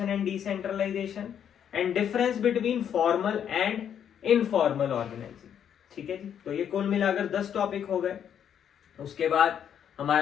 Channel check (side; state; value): right; quieter; 8.9 dB